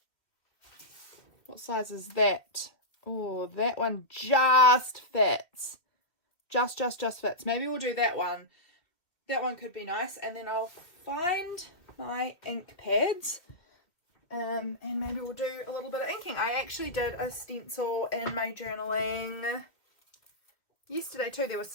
size is that? Oh, that one just fits. Just fits. Maybe we'll do that one. That one could be nice. And then I'll find my ink pads. And maybe we'll do a little bit of inking. I actually did a stencil in my journaling yesterday too. There was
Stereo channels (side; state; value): right; late; 2.8 ms